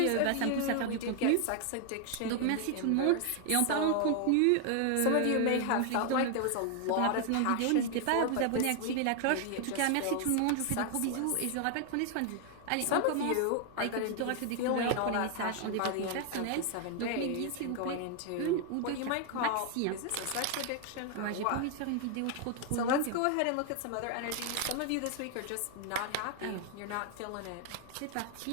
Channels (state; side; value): different; both; correlation 0.00